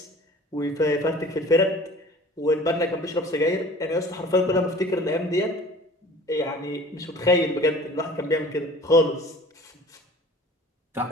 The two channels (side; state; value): both; normal; correlation 0.45